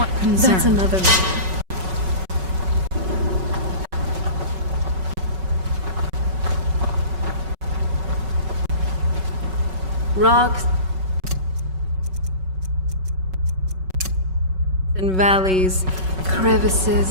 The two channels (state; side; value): late; left; 5.3 ms